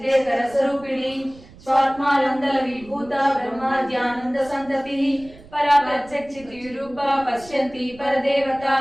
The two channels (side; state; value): right; noise; rumble, 22 dB below the sound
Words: స్వరూపిణి స్వాత్మానందల విభూత బ్రహ్మాద్యానంద సంతతి పరా ప్రత్యక్షితి రూప పశ్యంతి పరదేవత